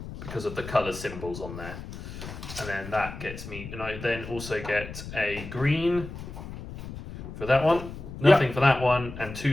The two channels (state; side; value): noise; left; rumble, 11 dB below the sound